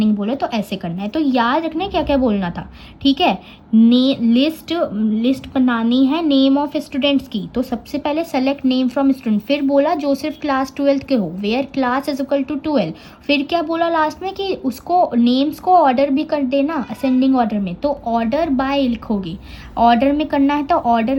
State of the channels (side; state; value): both; identical; correlation 1.00